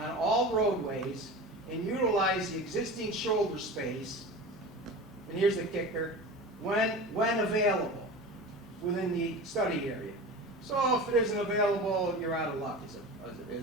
all roadways and utilize the existing shoulder space, and here's the kicker, when available within the study area. So if it isn't available, you're out of luck,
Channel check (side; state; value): both; normal; correlation 0.32